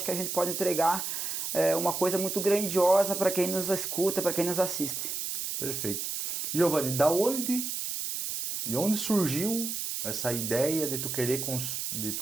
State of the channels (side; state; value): right; noise; hiss, 3 dB below the sound